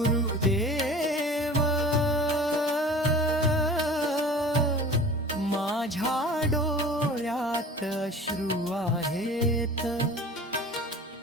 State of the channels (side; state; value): both; normal; correlation 0.41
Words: माझ्या डोळ्यात अश्रू आहेत